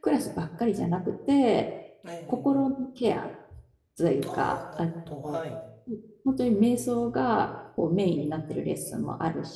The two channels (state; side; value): identical; both; correlation 1.00